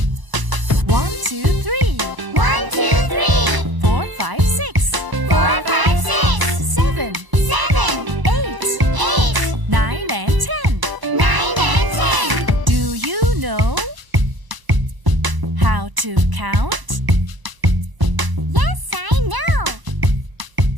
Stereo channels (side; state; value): left; late; 1.0 ms